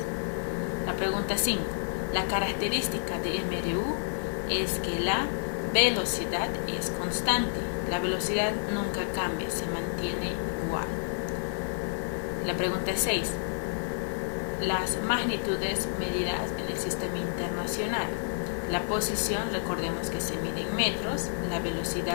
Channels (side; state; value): right; silent; 58 dB below the other